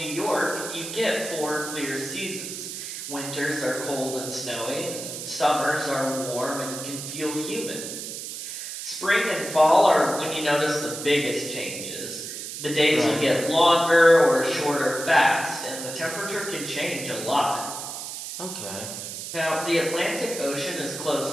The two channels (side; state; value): right; noise; hiss, 8 dB below the sound